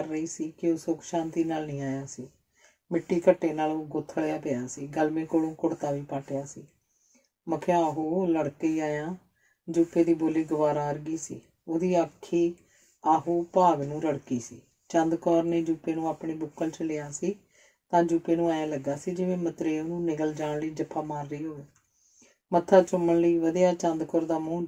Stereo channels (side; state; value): both; identical; correlation 1.00